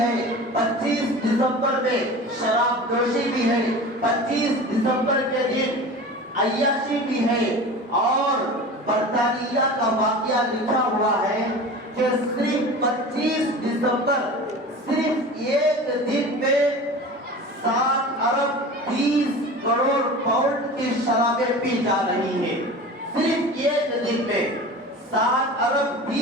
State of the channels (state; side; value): normal; both; correlation 0.35